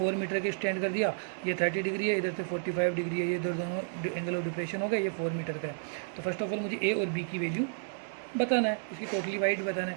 मीटर के स्टैंड कर दिया, ये 30 डिग्री है, इधर से 45 डिग्री है, ये इधर दोनों एंगल ऑफ डिप्रेशन हो गए, ये 4 मीटर का है। तो फर्स्ट ऑफ ऑल मुझे ए और बी की वैल्यू बताना है, इसकी टोटली वाइड बताना है।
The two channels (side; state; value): left; silent; digital silence